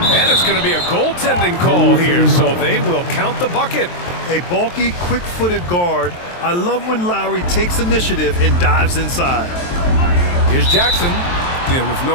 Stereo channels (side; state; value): right; late; 23 ms